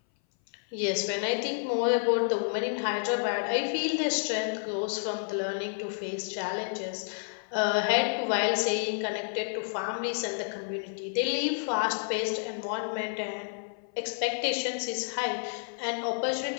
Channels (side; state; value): right; silent; 58 dB below the other